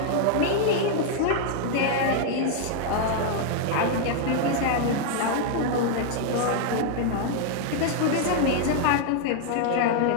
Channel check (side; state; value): both; different; correlation 0.00